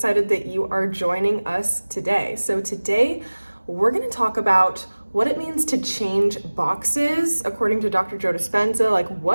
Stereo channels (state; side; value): inverted; both; correlation -1.00